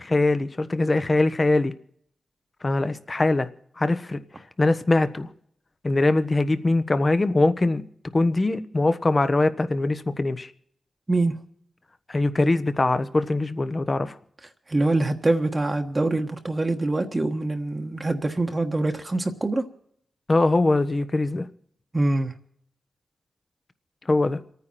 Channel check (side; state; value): both; normal; correlation 0.97